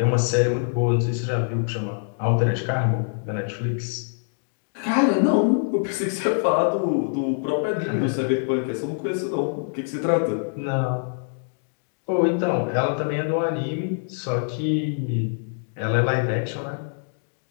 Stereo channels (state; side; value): silent; right; digital silence